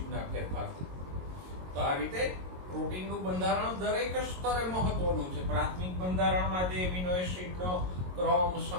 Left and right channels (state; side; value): late; left; 22 ms